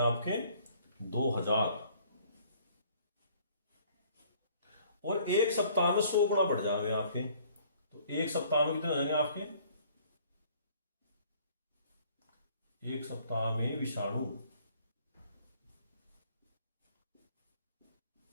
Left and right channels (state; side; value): inverted; both; correlation -0.57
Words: आपके 2000, और 1 सप्ताह में 100 गुना बढ़ जाएंगे आपके। तो 1 सप्ताह में कितने हो जाएंगे आपके, 1 सप्ताह में विषाणु